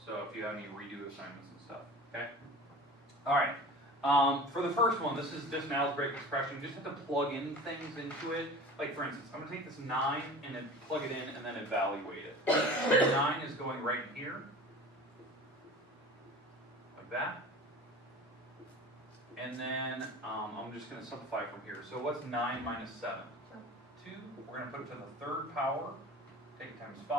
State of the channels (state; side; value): normal; both; correlation 0.38